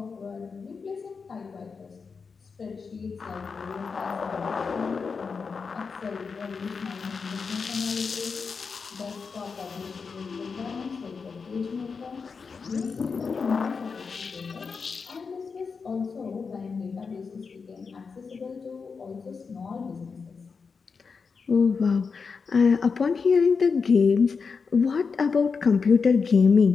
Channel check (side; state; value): right; quieter; 5.2 dB